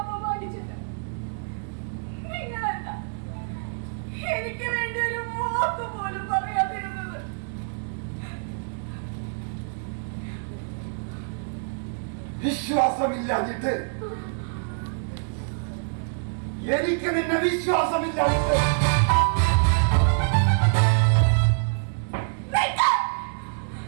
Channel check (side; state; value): left; silent; digital silence